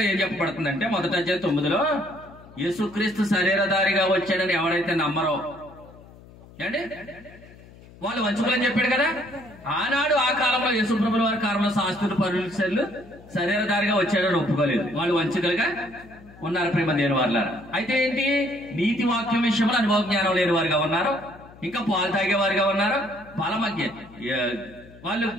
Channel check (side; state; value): left; noise; hum, 21 dB below the sound